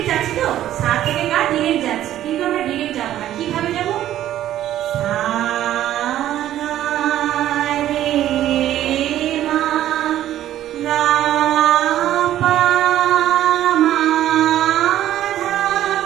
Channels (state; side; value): quieter; left; 12.5 dB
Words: যাচ্ছি, তো সা থেকে গা ডিরেক্ট যাচ্ছি, কিন্তু আমরা ডিরেক্ট যাব না। কিভাবে যাব? সা গা রে মা গা পা মা ধা